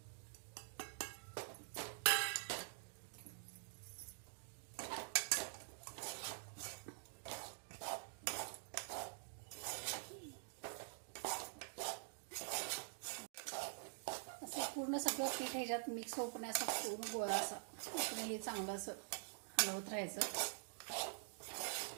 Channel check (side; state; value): left; silent; digital silence